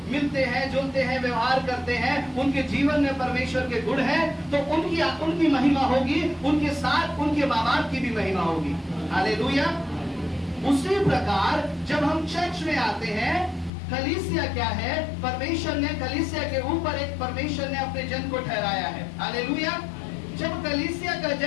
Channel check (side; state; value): right; drops out; at 13.7 s